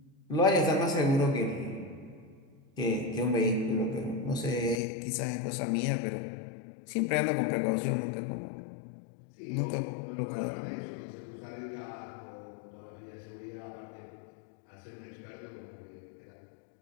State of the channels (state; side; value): drops out; right; at 4.8 s